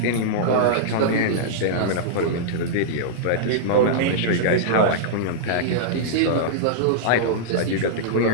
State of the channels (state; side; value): different; both; correlation -0.03